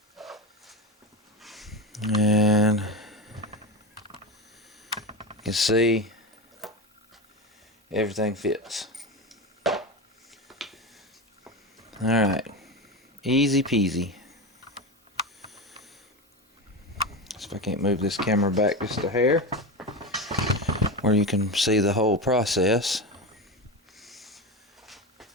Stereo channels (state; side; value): normal; both; correlation 0.21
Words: and you can see everything fits. Alright, easy peasy. So if I can't move this camera back just a hair, where you can see the whole process.